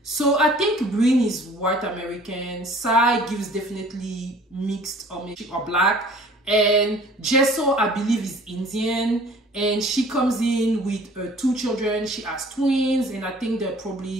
So I think Brynn is white American. Sai gives definitely mixed or black. And Jessel, I believe, is Indian. And she comes in with 2 children. She has twins, and I think they're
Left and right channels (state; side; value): normal; both; correlation 0.51